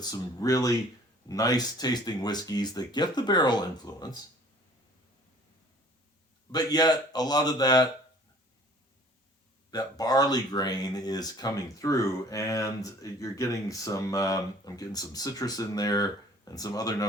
some really nice tasting whiskeys that get the barrel influence, but yet a lot of that barley grain is coming through, and you're getting some, I'm getting some citrus in there and some other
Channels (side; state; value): both; normal; correlation 0.52